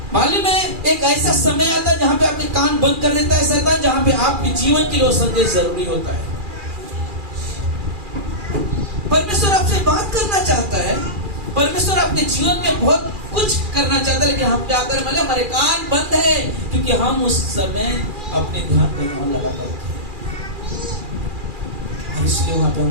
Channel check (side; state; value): left; late; 2.4 ms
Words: मालूम है एक ऐसा समय आता है जहाँ पे आपके कान बंद कर देता है शैतान, जहाँ पे आपके जीवन के लिए संदेश जरूरी होता है। परमेश्वर आपसे बात करना चाहता है, परमेश्वर आपके जीवन में बहुत कुछ करना चाहता है, लेकिन हम क्या करें? मतलब हमारे कान बंद है, क्योंकि हम उस समय अपने ध्यान पे लगा कर रखे, इसलिए वहां पे